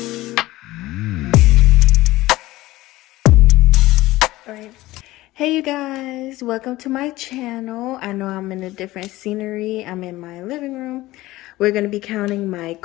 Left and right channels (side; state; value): right; quieter; 17.8 dB